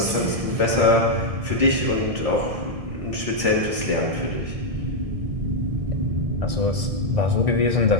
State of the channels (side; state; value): left; late; 1.6 ms